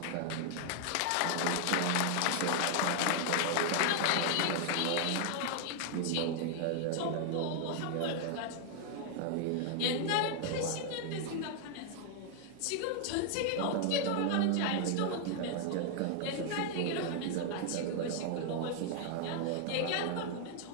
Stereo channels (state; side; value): different; both; correlation 0.00